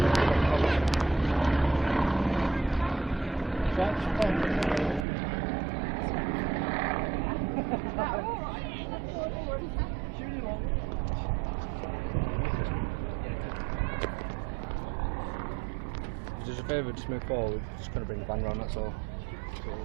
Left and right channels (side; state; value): left; drops out; at 5.1 s